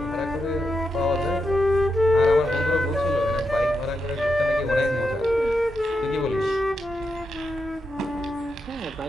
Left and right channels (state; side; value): normal; both; correlation 0.85